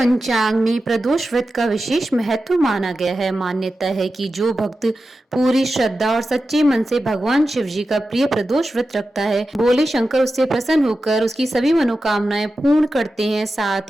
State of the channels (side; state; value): both; normal; correlation 0.92